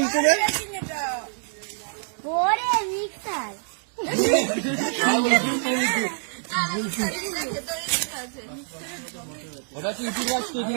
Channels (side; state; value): left; silent; digital silence